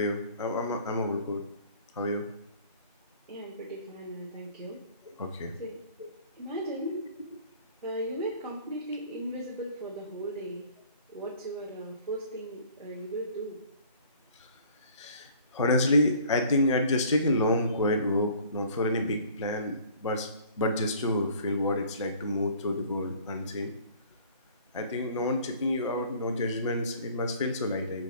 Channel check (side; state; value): both; inverted; correlation -0.52